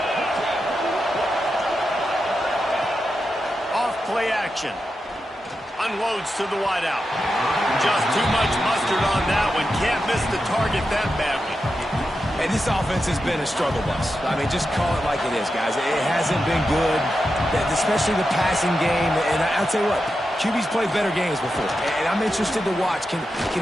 Off play action. Unloads to the wideout. Just too much mustard on that one. Can't miss the target that badly. And this offense has been a struggle bus. I mean, just call it like it is, guys. It hasn't been good, especially the passing game. And I'll tell you what, QB's played better games before. And I'm interested to watch. Can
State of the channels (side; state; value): both; normal; correlation 0.89